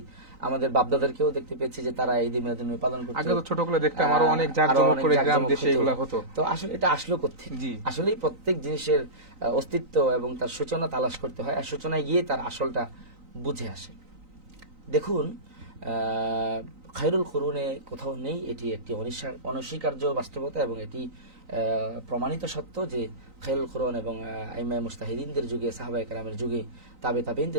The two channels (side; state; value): left; late; 3.9 ms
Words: আমাদের বাপদাদারকেও দেখতে পেয়েছি যে তারা ঈদ মিলাদুন নবী পালন করতো। আগে তো ছোটগুলো দেখতাম আরো অনেক জাঁকজমক করে গ্রাম দেশে এগুলো হতো। তো আসলে এটা আসলো কোত্থেকে? জি। আসলেই প্রত্যেক জিনিসের অস্তিত্ব এবং তার সূচনা তালাশ করতে হয়, আর সূচনায় গিয়ে তার আসলটা বুঝে আসে। দেখুন, খায়রুল কুরুনে কোথাও নেই, এটি একটি অনস্বীকার্য বাস্তবতা, এবং এটি প্রমাণিত সত্য যে খায়রুল কুরুন এবং আইমায়ে মুজতাহিদিনদের যুগে, সাহাবায়ে কেরামের যুগে, তাবে